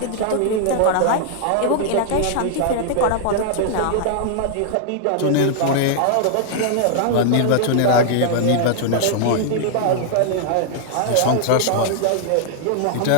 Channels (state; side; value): different; both; correlation -0.01